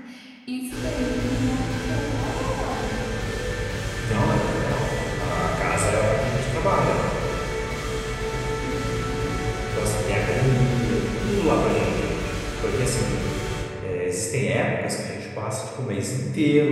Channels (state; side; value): identical; both; correlation 1.00